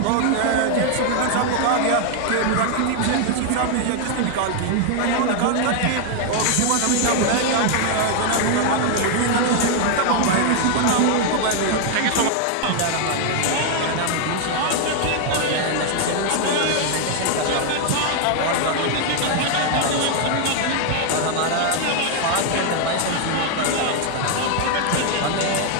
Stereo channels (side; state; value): both; different; correlation 0.00